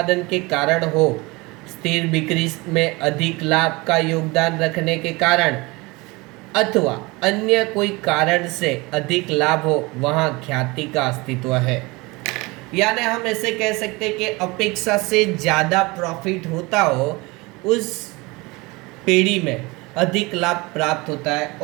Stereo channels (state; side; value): quieter; left; 24.2 dB